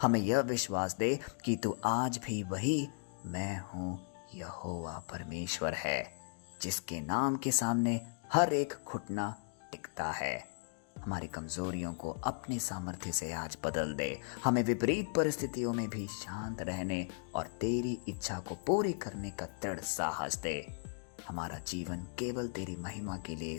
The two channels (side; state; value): right; silent; digital silence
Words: हमें यह विश्वास दे कि तू आज भी वही मैं हूँ यहोवा परमेश्वर है, जिसके नाम के सामने हर एक घुटना टिकता है। हमारी कमजोरियों को अपनी सामर्थ्य से आज बदल दे। हमें विपरीत परिस्थितियों में भी शांत रहने और तेरी इच्छा को पूरी करने का दृढ़ साहस दे। हमारा जीवन केवल तेरी महिमा के लिए